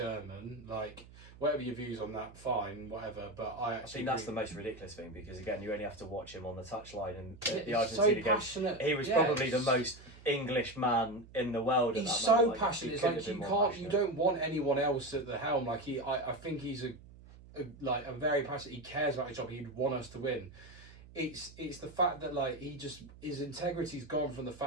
Like, whatever your views on that, fine, whatever. But I think that's the most ridiculous thing, because again, you only have to watch him on the touchline, and the so Argentina passionate. game, he was probably the most English man in the world. He's so passionate. It's like you don't want anyone else at the helm. Like, I think he's a very passionate. He cares about his job. He'd want us to win. It's the fact that, like, his integrity's gone from the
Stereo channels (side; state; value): right; noise; hum, 20 dB below the sound